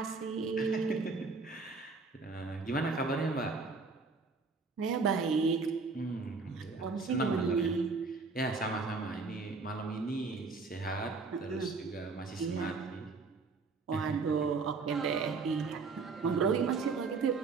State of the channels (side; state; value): left; quieter; 4.3 dB